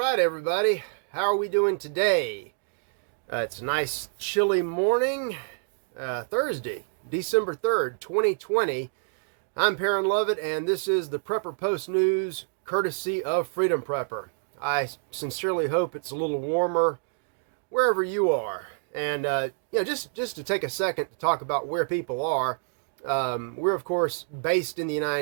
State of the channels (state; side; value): silent; left; digital silence